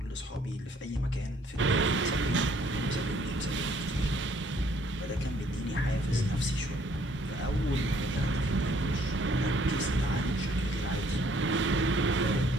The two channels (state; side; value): normal; both; correlation 0.63